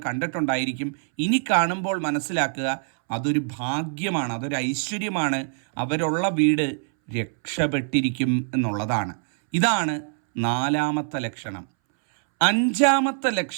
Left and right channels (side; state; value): left; silent; 62 dB below the other